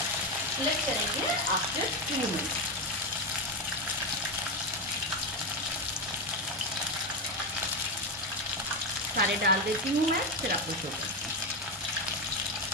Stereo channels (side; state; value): both; normal; correlation 0.11